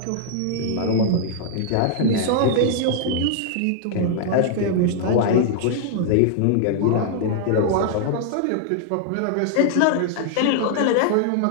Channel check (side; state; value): both; different; correlation -0.01